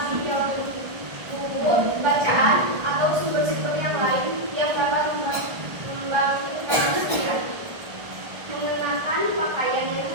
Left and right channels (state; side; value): late; left; 1.4 ms